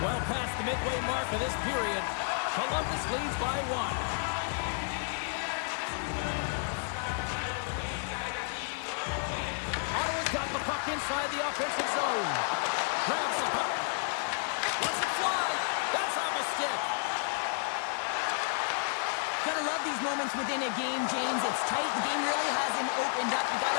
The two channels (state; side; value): silent; right; 57 dB below the other